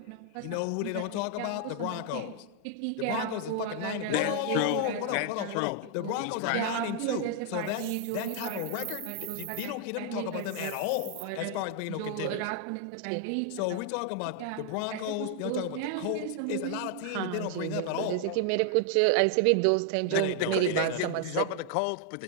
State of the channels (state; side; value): different; both; correlation 0.00